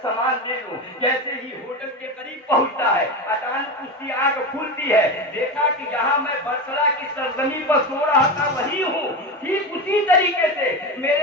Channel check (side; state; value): both; normal; correlation 0.21